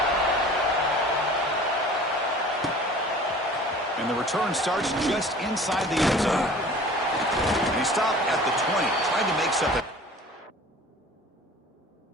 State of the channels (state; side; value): normal; both; correlation 0.45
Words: And the return starts just inside the end zone. And he stopped at the 20, trying to make something.